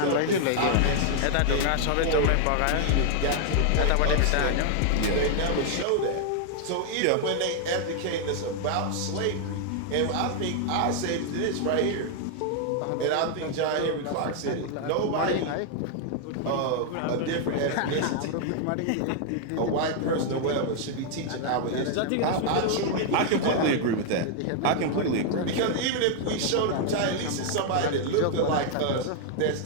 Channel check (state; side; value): different; both; correlation 0.00